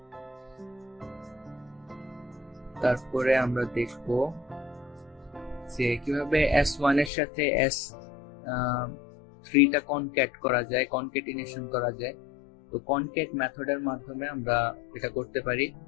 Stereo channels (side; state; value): right; drops out; at 7.1 s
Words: তারপরে আমরা দেখব যে কিভাবে s1 এর সাথে s3 টা কনক্যাট করা যায়, কনক্যাটিনেশন করা যায়। তো কনক্যাট মেথডের মাধ্যমে আমরা এটা করতে পারি।